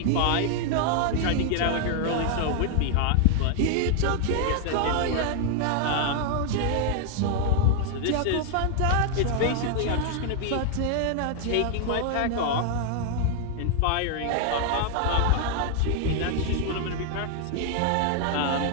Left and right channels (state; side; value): different; both; correlation 0.00